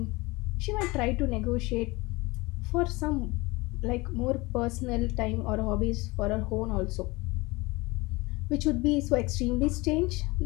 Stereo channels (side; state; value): right; quieter; 23.3 dB